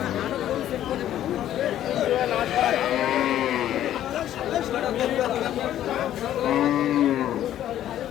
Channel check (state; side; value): quieter; right; 11.9 dB